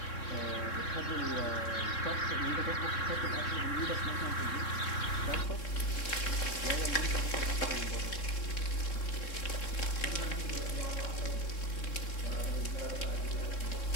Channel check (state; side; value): late; right; 3.7 ms